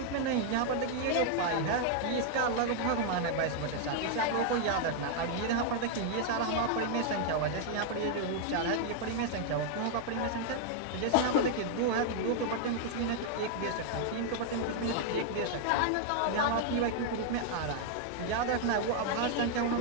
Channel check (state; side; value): different; both; correlation 0.00